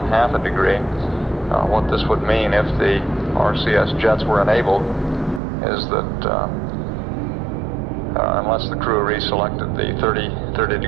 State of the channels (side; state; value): left; drops out; at 5.4 s